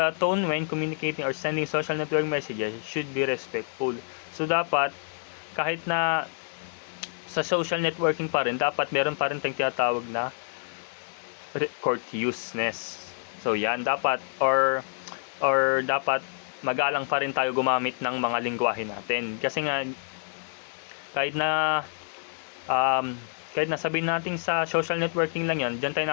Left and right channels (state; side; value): silent; right; 60 dB below the other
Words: tone when communicating or sending social network messages should be respectful. So dapat, kahit na sa social networking pa rin, dapat meron pa rin tayong tinatawag na courteousness. So yan, dapat or dapat magalang pa rin tayo gumamit ng mga lengguwahe natin. Kasi nga, kahit na sabihin natin sa social networking lang yan, dyan